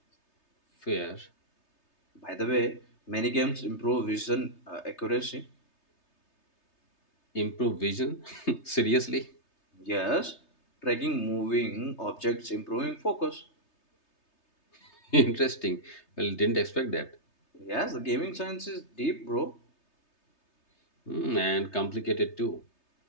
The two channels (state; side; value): late; right; 3.3 ms